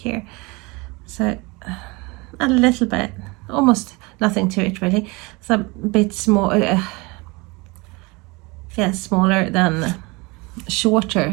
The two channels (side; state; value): left; quieter; 25.8 dB